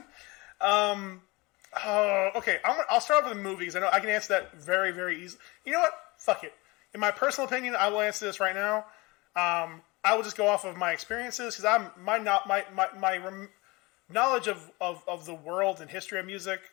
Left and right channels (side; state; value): right; quieter; 24.2 dB